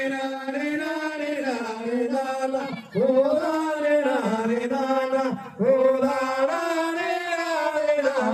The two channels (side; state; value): both; identical; correlation 1.00